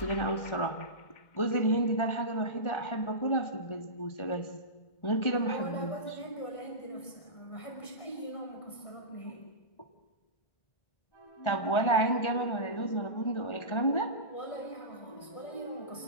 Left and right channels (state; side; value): late; right; 1.4 ms